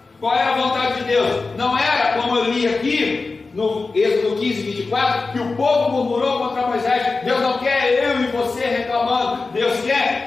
Qual era a vontade de Deus? Não era, como eu li aqui, no Êxodo 15, 24, que o povo murmurou contra Moisés. Deus não quer eu e você reclamando. Deus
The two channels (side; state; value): right; quieter; 3.9 dB